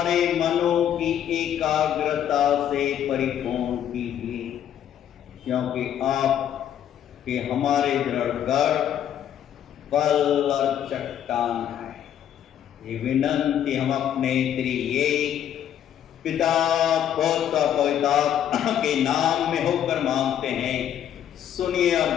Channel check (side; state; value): right; quieter; 10.1 dB